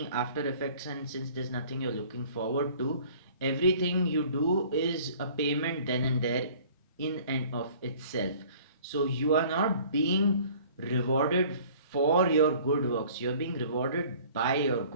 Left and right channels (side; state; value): both; inverted; correlation -0.51